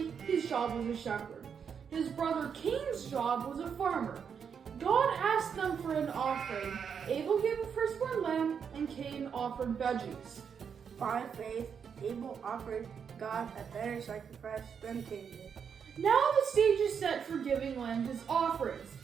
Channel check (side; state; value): left; quieter; 7.0 dB